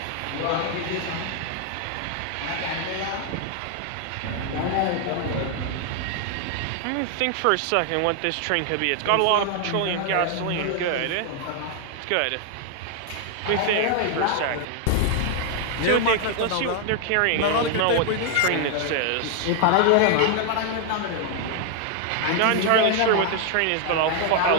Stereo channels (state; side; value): different; both; correlation 0.00